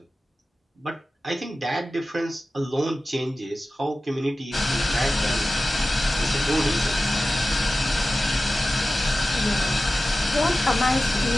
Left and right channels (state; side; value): normal; both; correlation 0.95